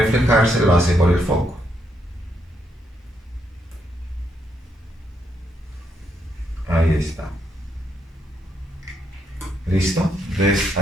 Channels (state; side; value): normal; both; correlation 0.77